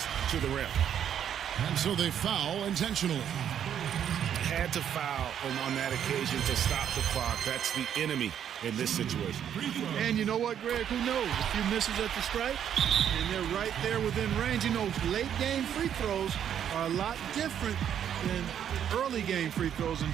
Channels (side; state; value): left; quieter; 9.3 dB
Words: to the rim. And so they foul intentionally. Had to foul on that occasion to stop the clock. That's the enemy in this situation. And you know what, Greg? Who knows? A few misses at the stripe, and they're right there within range. You know, late game free throws are a lot different than early game free throws in